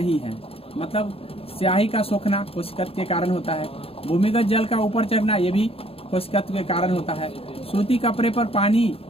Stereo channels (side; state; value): right; late; 0.28 ms